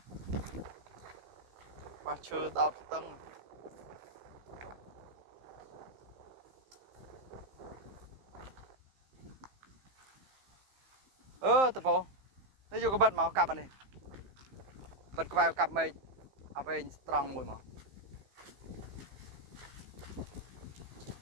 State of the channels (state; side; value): late; left; 15 ms